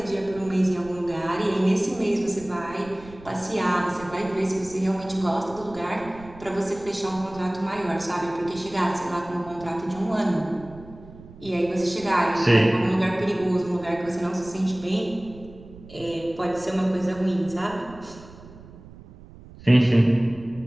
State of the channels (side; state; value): right; noise; rumble, 19 dB below the sound